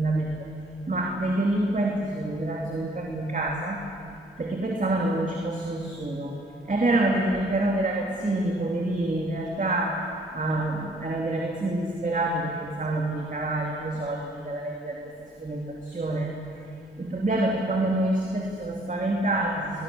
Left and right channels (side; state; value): both; normal; correlation 0.61